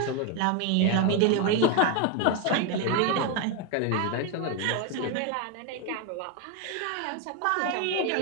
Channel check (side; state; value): both; different; correlation 0.01